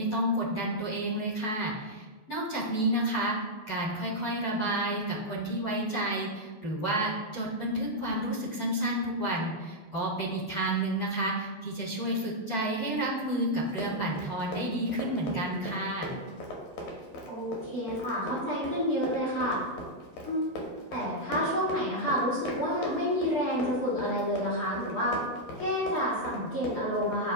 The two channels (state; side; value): late; right; 9.2 ms